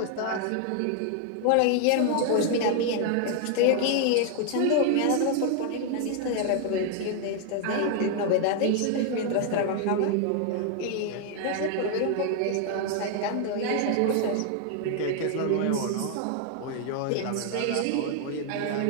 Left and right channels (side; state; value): both; different; correlation 0.00